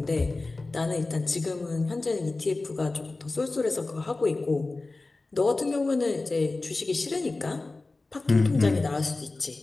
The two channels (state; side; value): quieter; right; 3.3 dB